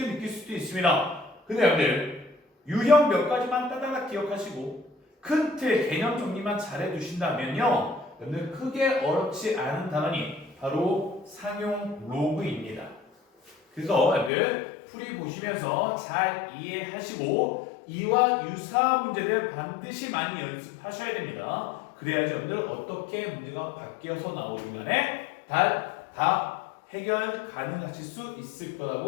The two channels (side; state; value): right; drops out; at 14.3 s